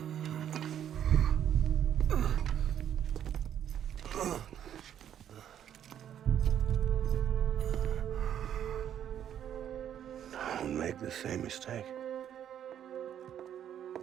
Don't make the same mistake.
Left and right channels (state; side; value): quieter; left; 9.9 dB